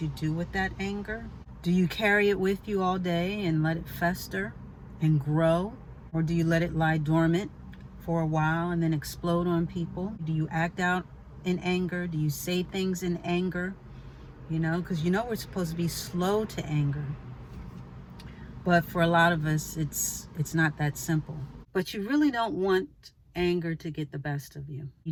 you do with that anger. Do you carry it with you all day and let it fester and grow? Or do you let it lie dormant for a while and then explode on people? Do you act out in anger? Do you say things in anger? Because we're supposed to be slow to anger. But for a lot of us, it's not that simple. But you really don't want anger to get the best of you.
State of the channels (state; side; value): identical; both; correlation 1.00